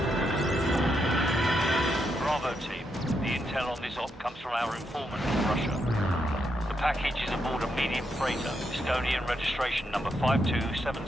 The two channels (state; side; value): normal; both; correlation 0.81